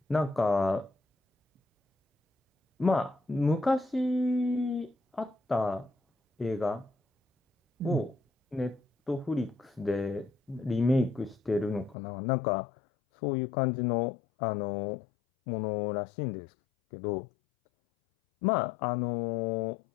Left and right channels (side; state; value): right; drops out; at 12.0 s